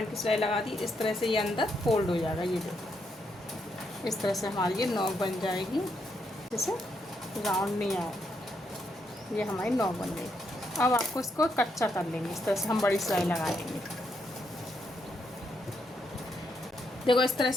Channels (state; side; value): normal; both; correlation 0.78